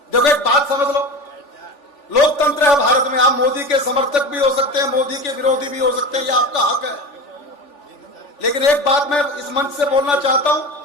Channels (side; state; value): right; late; 3.4 ms